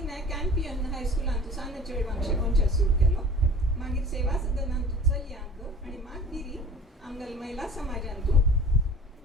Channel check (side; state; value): both; normal; correlation 0.43